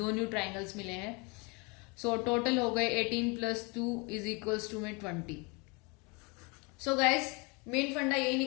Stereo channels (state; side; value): quieter; right; 29.8 dB